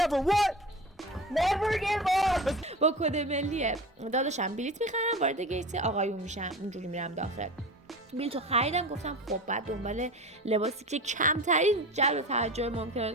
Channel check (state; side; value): normal; both; correlation 0.32